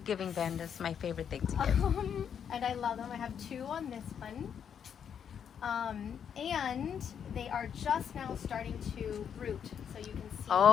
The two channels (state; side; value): quieter; right; 8.0 dB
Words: giving vandas, my favorite thing to give. And I love them. I have 2 on this one. And they are just now starting to root. So you can see